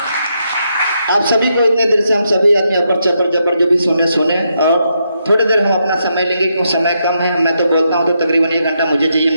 आप सभी को इतने देर से हम सभी आदमी अपर चपर जबर जो भी सुने और थोड़ी देर हम अपना समय लेंगे क्योंकि समय कम है। मैं तो बोलता हूँ तो तकरीबन 1 घंटा मुझे चाहिए,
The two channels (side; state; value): both; inverted; correlation -0.80